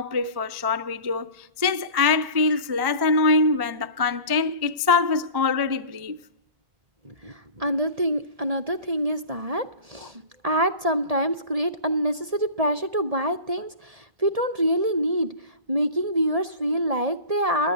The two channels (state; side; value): late; left; 1.1 ms